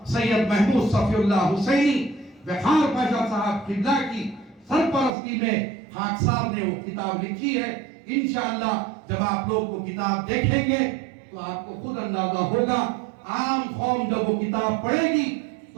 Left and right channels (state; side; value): drops out; left; at 5.1 s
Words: سید محمود صفی اللہ حسینی وقار پاشا صاحب قبلہ کی سرپرستی میں خاکسار نے وہ کتاب لکھی ہے. انشاءاللہ جب آپ لوگ وہ کتاب دیکھیں گے تو آپ کو خود اندازہ ہوگا. عام قوم جب وہ کتاب پڑھے گی